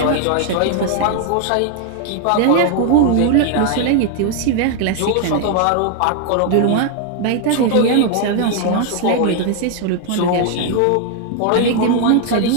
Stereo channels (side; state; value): both; different; correlation 0.00